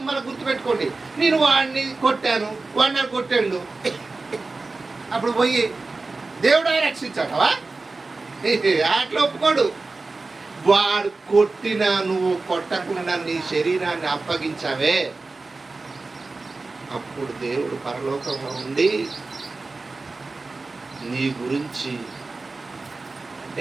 మన గుర్తుపెట్టుకోండి, నేను వాడిని కొట్టాను, వాడిని నన్ను కొట్టాడు, అప్పుడు పోయి దేవుడు రక్షించాడవా? అట్లా ఒప్పుకోడు. వాడు కొట్టినా నువ్వు కొట్టకుండా నీ శరీరాన్ని అప్పగించావే, అప్పుడు దేవుడు పరలోకంలో ఉండి నీ గురించి, అంటే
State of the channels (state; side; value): quieter; left; 3.6 dB